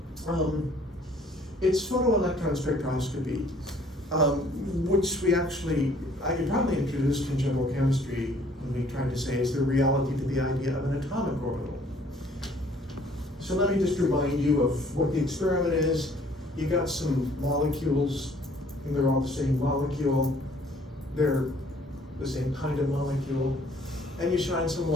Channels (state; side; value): normal; both; correlation 0.58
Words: It's photoelectron spectroscopy, which I probably introduced in general chemistry when we tried to say, is there reality to the idea of an atomic orbital? So let me just remind you of what the experiment is. You got some molecules, and they're all the same molecule. They're the same kind of molecule. And you shine some